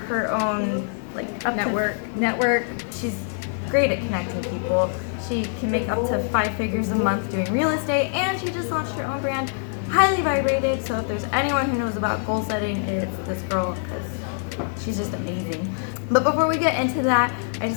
own network. She's great at connecting people. She can make up to 5 figures a month doing real estate, and she just launched her own brand, Highly Vibrated. So if there's anyone who knows about goal setting, it's this girl, because she's just amazing. But before we get into that, I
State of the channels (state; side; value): silent; right; 62 dB below the other